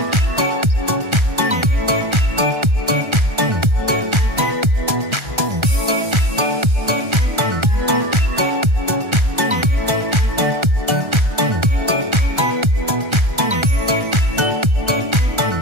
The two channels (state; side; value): late; left; 1.3 ms